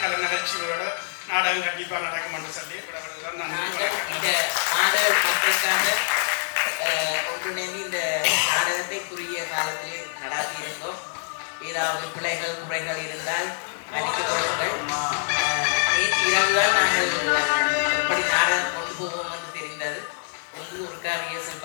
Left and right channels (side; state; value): right; silent; 56 dB below the other